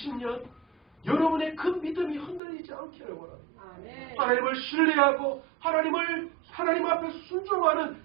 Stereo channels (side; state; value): left; drops out; at 2.4 s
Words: 여러분의 그 믿음이 흔들리지 않기를 원합니다. 아멘. 하나님을 신뢰하고 하나님 앞에 순종하는